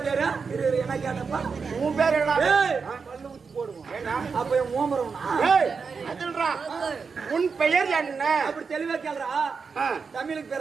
பேரு? என்ன கேட்டப்பா? உன் பேர் என்ன? பல்லு ஊத்தி போடுவோம். அப்ப ஓமரம் அதுன்றா. உன் பெயர் என்ன? அப்படி தெளிவா கேக்குறா. தமிழுக்கு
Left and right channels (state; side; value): quieter; left; 5.3 dB